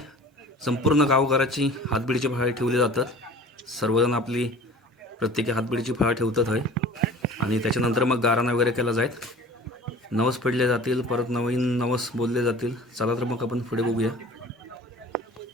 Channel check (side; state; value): both; normal; correlation 0.43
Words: संपूर्ण गावघराची हातबिडीची फळा ठेवली जातात. सर्वजण आपली प्रत्येकी हातबिडीची फळा ठेवतात होय. आणि त्याच्यानंतर मग गाराणा वगैरे केला जाईल. नवस पडले जातील, परत नवीन नवस बोलले जातील. चला तर मग आपण पुढे बघूया.